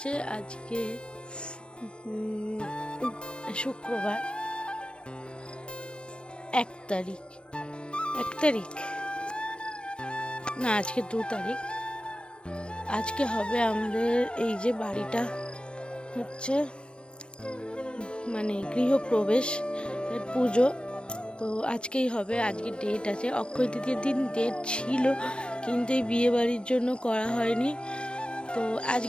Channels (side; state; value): right; late; 0.056 ms